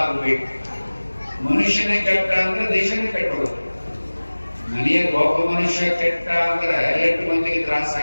ಆಗ್ಬೇಕು. ಮನುಷ್ಯನೇ ಕೆಟ್ಟ ಅಂದ್ರೆ ದೇಶನೇ ಕೆಟ್ಟೋಗುತ್ತೆ. ಮನೆಯ ಒಬ್ಬ ಮನುಷ್ಯ ಕೆಟ್ಟ ಅಂದ್ರೆ ಎಷ್ಟು ಮಂದಿಗೆ ತ್ರಾಸ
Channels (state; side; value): inverted; both; correlation -1.00